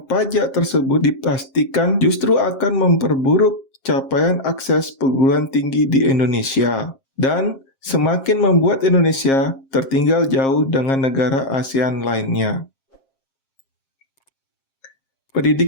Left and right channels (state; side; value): late; right; 7.5 ms